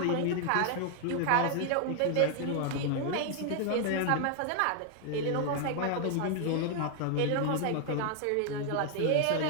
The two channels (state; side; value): different; both; correlation 0.00